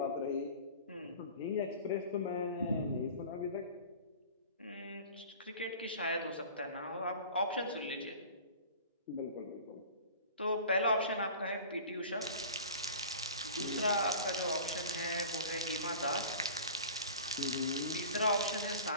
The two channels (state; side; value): inverted; both; correlation -0.39